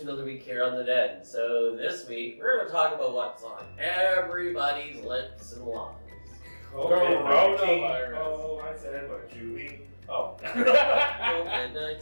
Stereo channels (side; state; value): both; inverted; correlation -1.00